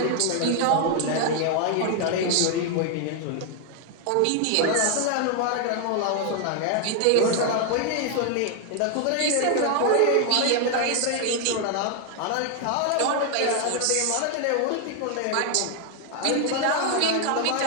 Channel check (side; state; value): both; different; correlation 0.00